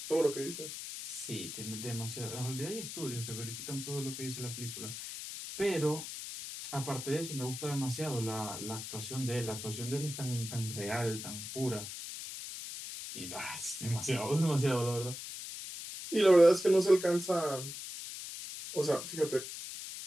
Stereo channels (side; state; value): left; noise; hiss, 8 dB below the sound